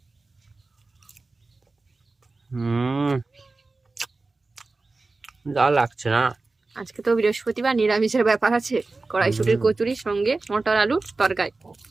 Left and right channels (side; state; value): left; quieter; 3.6 dB